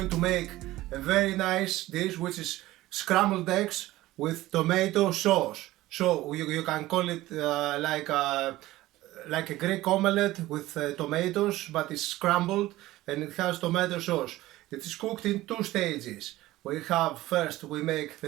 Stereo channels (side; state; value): left; quieter; 16.9 dB